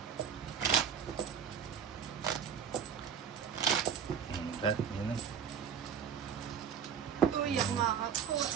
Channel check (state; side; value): quieter; left; 7.6 dB